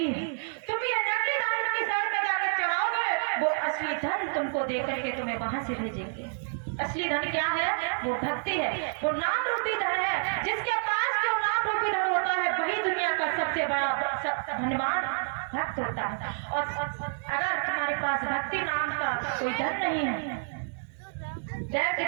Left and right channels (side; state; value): left; silent; 59 dB below the other